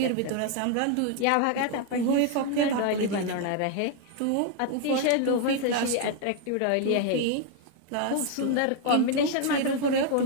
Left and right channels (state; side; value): different; both; correlation 0.00